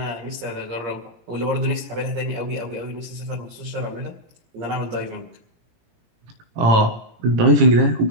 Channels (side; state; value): left; late; 18 ms